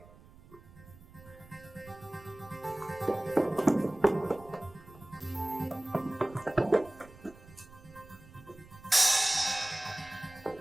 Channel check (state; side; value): noise; right; rumble, 22 dB below the sound